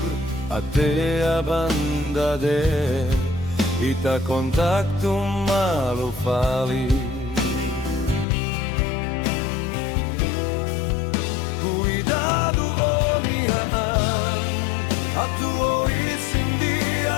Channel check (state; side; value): drops out; right; at 8.2 s